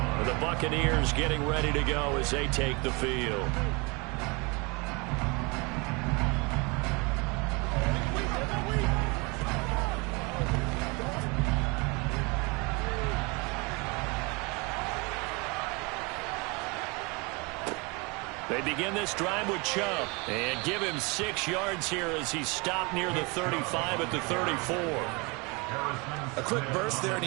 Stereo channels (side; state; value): left; quieter; 28.4 dB